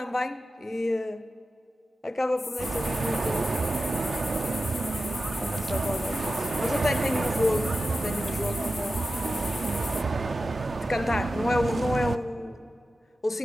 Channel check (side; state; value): both; normal; correlation 0.93